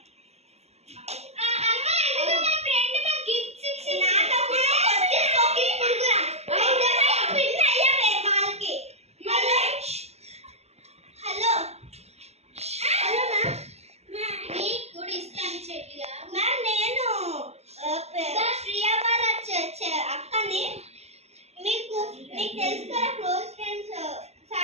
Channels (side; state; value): left; late; 0.31 ms